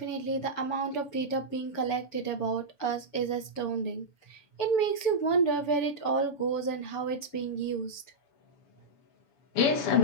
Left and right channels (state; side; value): late; right; 7.0 ms